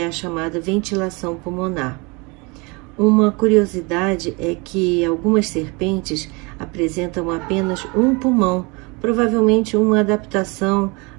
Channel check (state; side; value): quieter; left; 28.3 dB